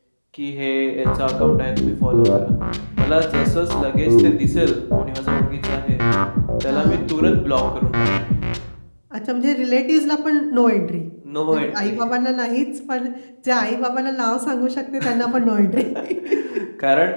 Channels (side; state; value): both; inverted; correlation -1.00